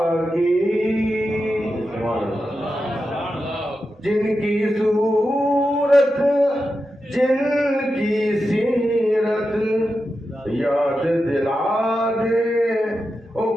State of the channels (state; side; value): normal; both; correlation 0.90